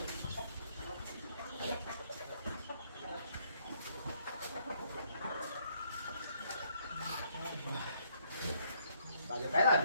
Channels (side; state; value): both; inverted; correlation -0.68